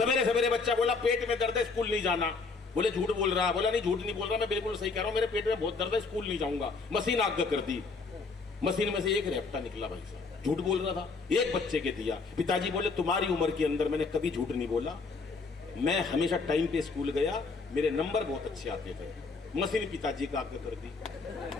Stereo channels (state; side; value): quieter; right; 4.3 dB